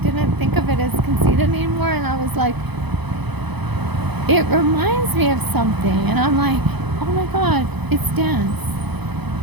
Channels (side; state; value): left; late; 0.99 ms